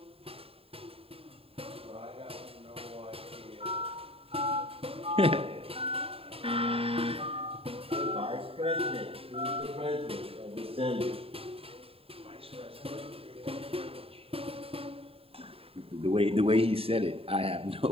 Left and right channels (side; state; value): left; late; 0.27 ms